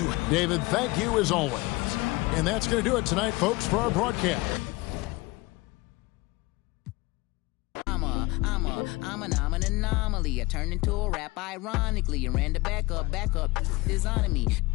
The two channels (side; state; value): right; quieter; 22.5 dB